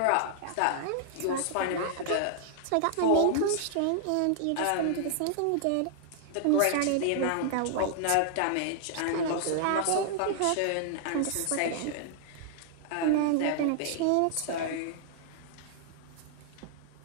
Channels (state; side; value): different; both; correlation -0.01